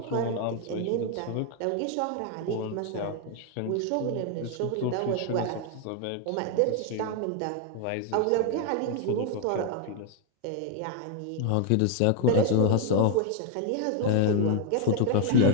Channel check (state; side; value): different; both; correlation 0.00